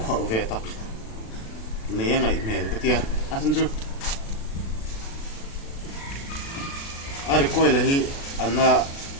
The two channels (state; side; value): late; right; 36 ms